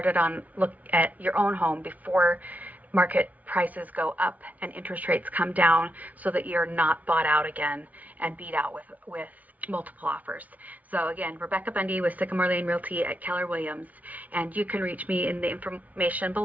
on look at your own home before market prices go up and interest rates come down, so that you're not bought out again and beat out with multiple offers. So again, Rebecca Bundy with Sycamore Lane Realty at Keller Williams, and you can reach me in the information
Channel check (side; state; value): left; late; 0.073 ms